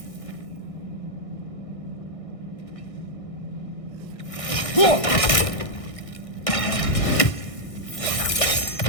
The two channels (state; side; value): late; right; 1.6 ms